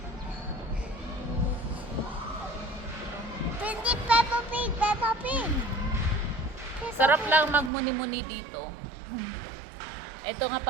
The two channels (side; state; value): left; drops out; at 7.7 s